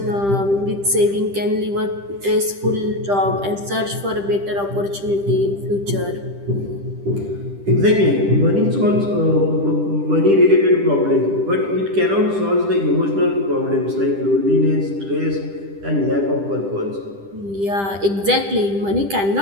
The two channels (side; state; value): left; late; 10 ms